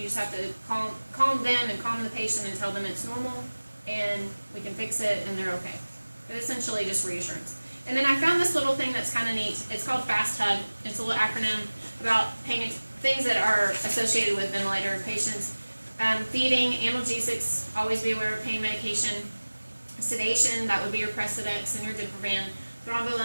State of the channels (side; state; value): both; inverted; correlation -1.00